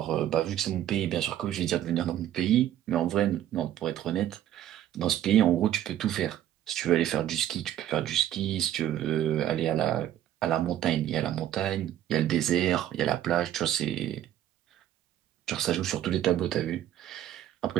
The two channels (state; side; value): quieter; left; 11.8 dB